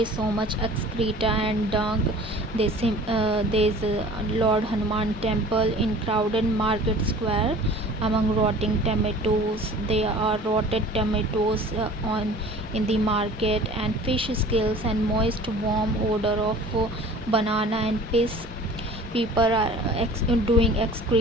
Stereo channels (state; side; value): normal; both; correlation 0.45